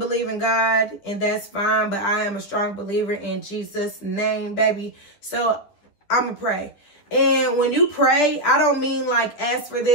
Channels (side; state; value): right; late; 10 ms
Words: in God, and that's fine, but I am a strong believer in Jesus' name, baby. So I'm going to pray. And when you pray, I don't mean like ask for